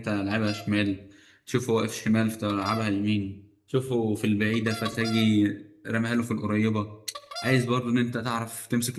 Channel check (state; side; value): identical; both; correlation 1.00